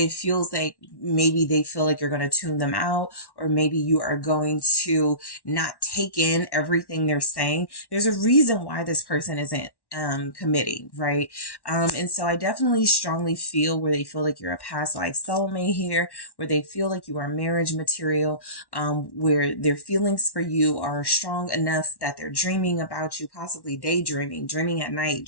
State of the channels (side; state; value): right; late; 1.1 ms